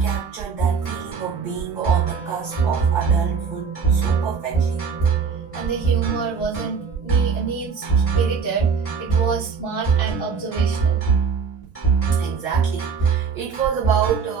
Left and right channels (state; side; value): quieter; left; 5.9 dB